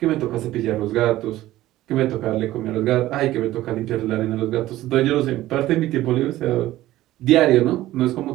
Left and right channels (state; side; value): quieter; left; 15.4 dB